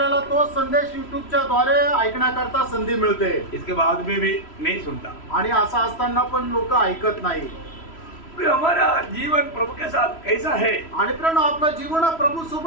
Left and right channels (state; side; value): late; right; 3.1 ms